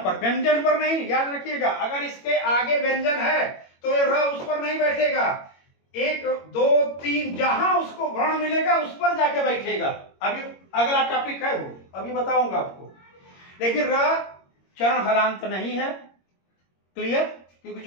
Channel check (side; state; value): right; late; 21 ms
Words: व्यंजन पर नहीं, याद रखिएगा। अगर इसके आगे व्यंजन है तो ये र उस पर नहीं बैठेगा। 1 2 3 जहां उसको वर्ण मिलेगा उस पर जाके बैठेगा। अभी अगला टॉपिक है वो, अभी बताऊंगा आपको। लेकिन र चरण हलांत नहीं है। क्लियर? क्योंकि